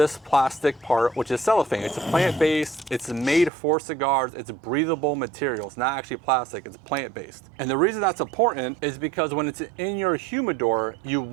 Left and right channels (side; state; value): left; drops out; at 3.5 s